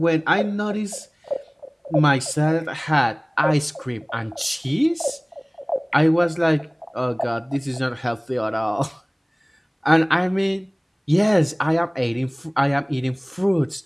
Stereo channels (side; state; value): both; identical; correlation 1.00